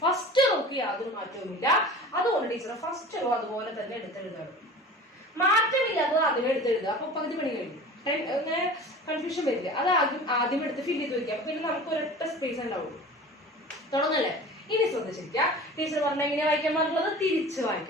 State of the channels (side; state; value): both; normal; correlation 0.39